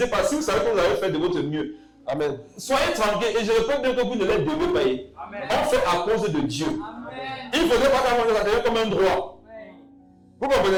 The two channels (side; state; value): both; identical; correlation 1.00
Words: pas. Si vous savez que vous avez fait de votre mieux, Amen. soyez tranquille. Et je répète bien que vous ne les devez pas payer. On fait à cause de Dieu. Amen. Il ne faudrait pas qu'à ça devient comme un droit. Vous